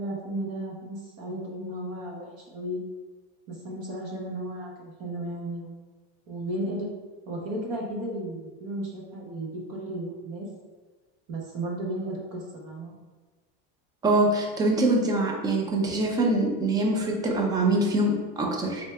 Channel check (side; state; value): both; normal; correlation 0.25